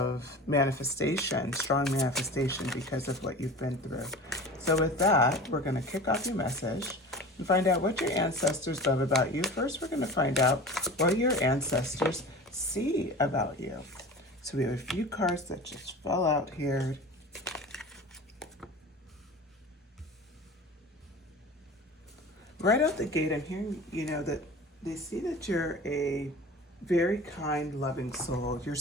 manifestation, strong manifestation because of what you've been through. So with that, we're going to kick off your message and find out what your ancestors love about you. First, we're going to find out what your ancestors see about you. So we have a few cards that just fell out here. Right out the gate, I'm hearing, that they see that you're a very kind, loving soul. You're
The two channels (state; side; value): normal; both; correlation 0.36